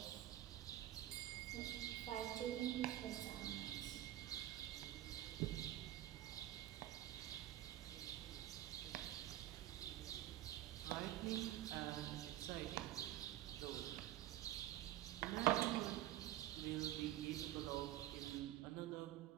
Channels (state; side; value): quieter; left; 13.9 dB